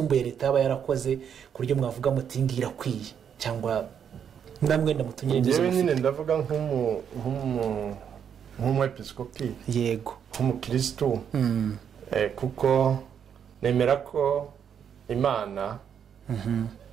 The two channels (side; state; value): left; quieter; 8.1 dB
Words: leta yaba yarakoze ku buryo mwavuga muti ngira kwiye cyangwa namwe ndamutunyire n'izo. Yewe nyine ndavuga nk'umwepiskopi, yego nk'umukristo, kuko nemera ko Imana